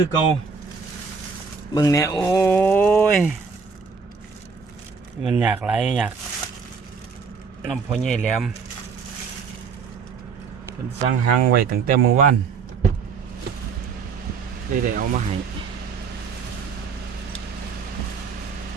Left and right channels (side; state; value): left; quieter; 5.4 dB